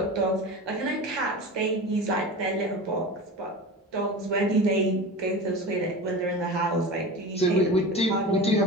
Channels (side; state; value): both; normal; correlation 0.30